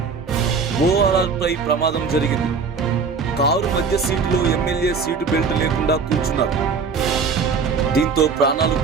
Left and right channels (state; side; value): quieter; left; 5.3 dB